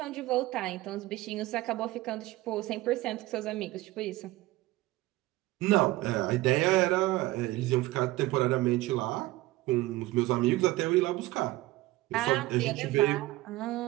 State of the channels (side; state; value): left; quieter; 18.2 dB